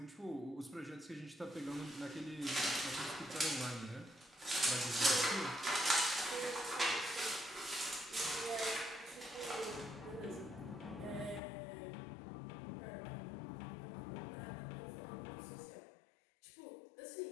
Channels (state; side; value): drops out; right; at 11.4 s